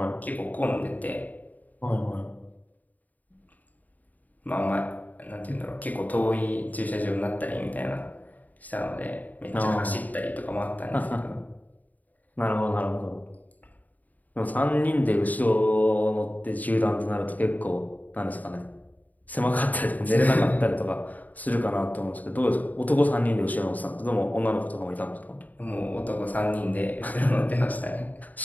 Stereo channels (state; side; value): late; right; 0.079 ms